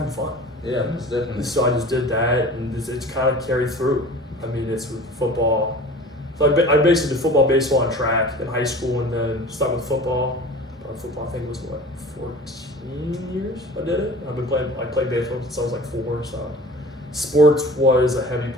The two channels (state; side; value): normal; both; correlation 0.41